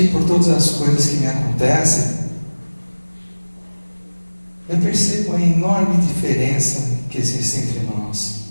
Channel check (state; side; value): inverted; both; correlation -1.00